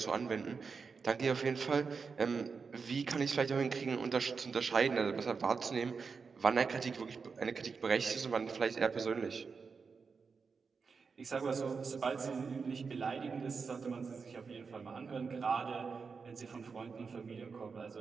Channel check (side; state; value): left; quieter; 5.2 dB